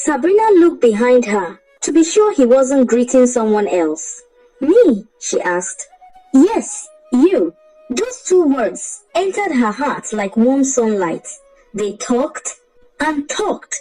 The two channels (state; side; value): identical; both; correlation 1.00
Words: looked behind her to be sure he wasn't greeting someone else. Me? She asked. Yes, you. Those two words entered her heart like warm sunlight. They talked and talked